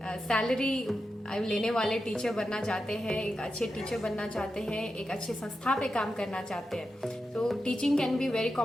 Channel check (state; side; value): normal; both; correlation 0.89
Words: सैलरी लेने वाले टीचर बनना चाहते हैं, एक अच्छे टीचर बनना चाहते हैं, एक अच्छे संस्था पे काम करना चाहते हैं. तो teaching can be very